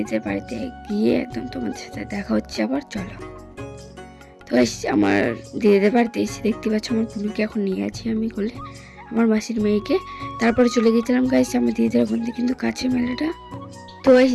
বাড়িতে গিয়ে একদম তোমাদের সাথে দেখা হচ্ছে আবার। চলো। তো গাইস, আমার দিদিদের বাড়িতে এসে দেখতে পাচ্ছ আমার পুনুকে এখন নিয়ে আছি আমি কোলে, আমার মাসির মেয়েকে। তারপরে চলে গেছিলাম গাইস আমার দিদিদের ওখান থেকে, কিন্তু কাছে মেলাটা। তো গাইস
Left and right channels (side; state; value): both; identical; correlation 1.00